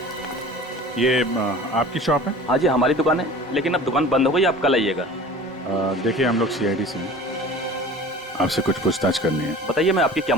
ये आपकी शॉप है? हाँ जी, हमारी दुकान है, लेकिन अब दुकान बंद हो गई, आप कल आइएगा। देखिए, हम लोग सीआईडी से हैं, आपसे कुछ पूछताछ करनी है। बताइए, मैं आपकी क्या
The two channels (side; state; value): both; normal; correlation 0.41